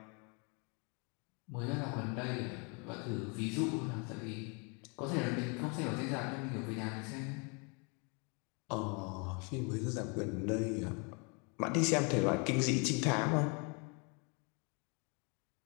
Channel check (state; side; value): quieter; right; 34.0 dB